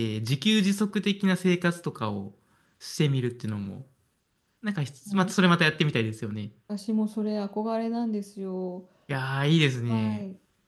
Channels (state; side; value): identical; both; correlation 1.00